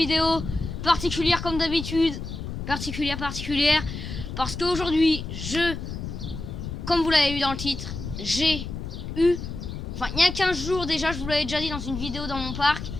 particulière comme d'habitude. Particulière, parce qu'aujourd'hui, comme vous l'avez vu dans le titre, j'ai eu, enfin il y a 15 jours déjà, je vous l'avais déjà dit dans une vidéo dans mon parc,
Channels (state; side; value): noise; left; rumble, 7 dB below the sound